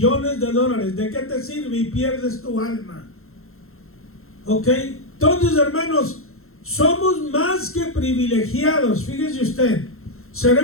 de dólares? ¿De qué te sirve y pierdes tu alma? ¿Ok? Entonces, hermanos, somos más que privilegiados. Fíjese usted,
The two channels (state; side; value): late; right; 0.62 ms